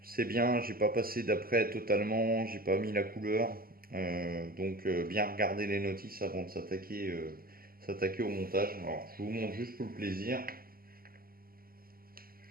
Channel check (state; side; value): late; left; 0.42 ms